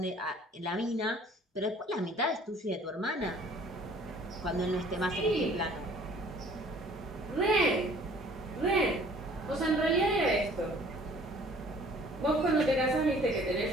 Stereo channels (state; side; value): normal; both; correlation 0.53